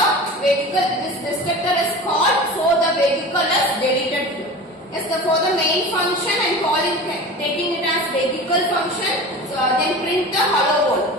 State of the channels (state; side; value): normal; both; correlation 0.34